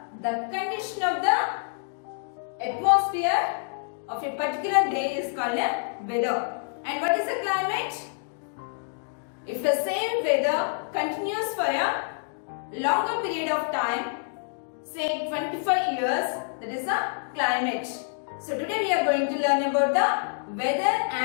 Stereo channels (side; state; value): right; silent; digital silence